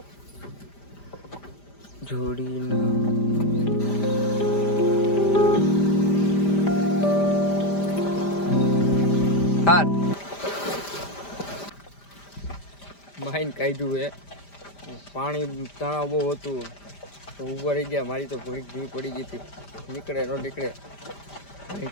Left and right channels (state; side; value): late; right; 5.0 ms